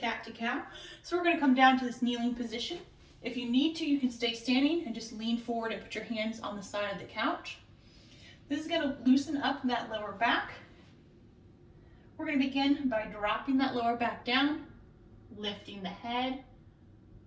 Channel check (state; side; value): identical; both; correlation 1.00